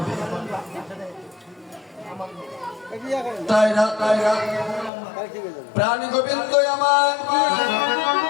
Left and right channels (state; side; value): drops out; right; at 4.9 s